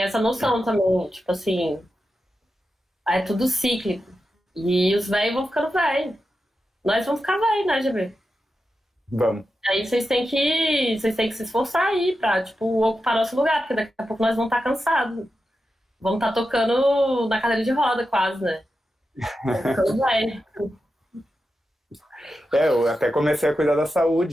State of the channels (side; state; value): both; normal; correlation 0.90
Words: essa noção também. Tipo assim, é tudo cíclico. E os velhos vão ficando velhos. Nós vamos ficar velhos, né, GB? Vamos. Aí vocês têm que se esforçar aí pra, tipo, ocupar nosso lugar, porque daqui a pouco nós vamos estar cansados. Vamos estar tocando na cadeira de roda, quase, né? Vamos ficando velho. Eu até comecei a cuidar da